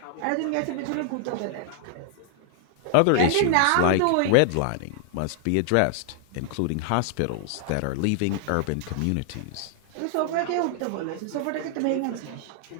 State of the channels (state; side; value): different; both; correlation 0.00